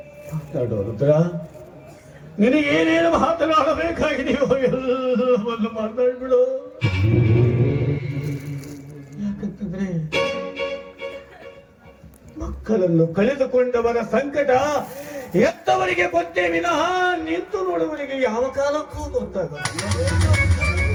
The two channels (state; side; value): identical; both; correlation 1.00